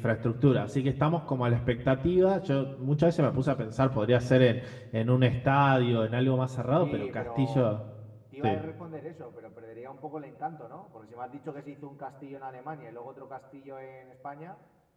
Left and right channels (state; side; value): identical; both; correlation 1.00